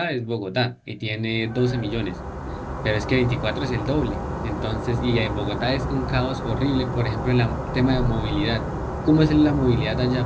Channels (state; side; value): identical; both; correlation 1.00